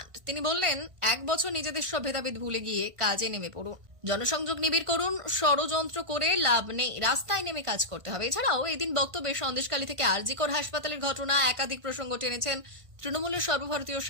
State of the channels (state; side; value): late; left; 1.5 ms